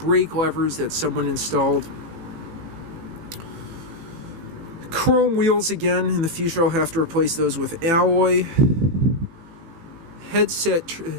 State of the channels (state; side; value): late; left; 18 ms